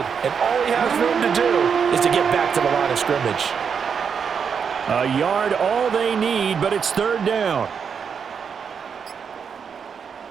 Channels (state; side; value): quieter; left; 6.6 dB